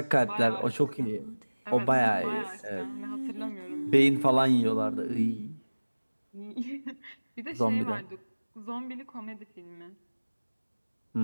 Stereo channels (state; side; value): inverted; both; correlation -1.00